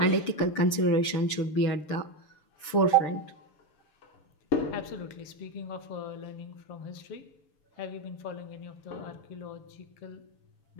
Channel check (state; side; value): late; right; 6.8 ms